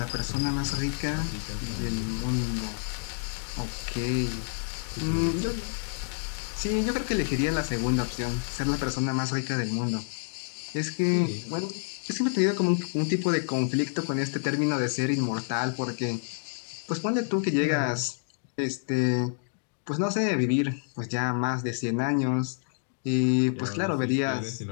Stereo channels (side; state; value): right; silent; digital silence